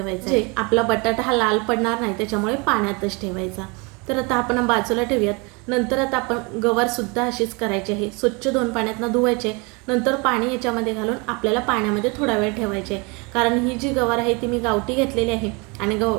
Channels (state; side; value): quieter; left; 29.4 dB